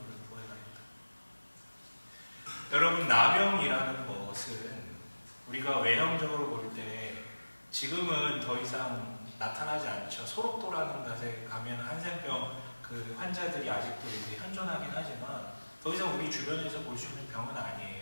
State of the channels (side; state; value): both; inverted; correlation -1.00